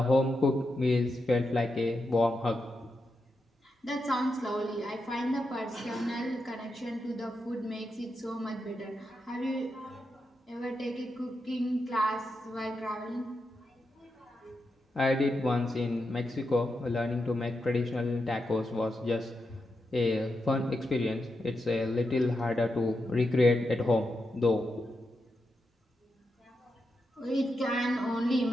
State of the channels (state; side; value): normal; both; correlation 0.86